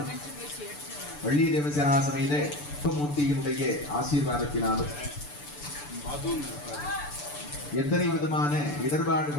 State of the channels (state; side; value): late; right; 6.9 ms